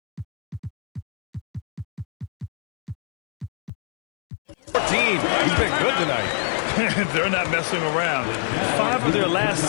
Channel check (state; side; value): drops out; right; at 3.7 s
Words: He's been good tonight. They're not messing around. 5 of their last